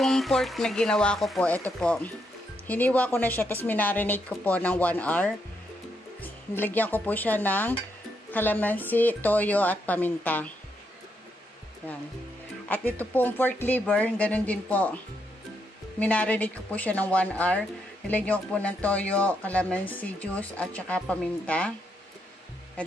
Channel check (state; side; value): normal; both; correlation 0.79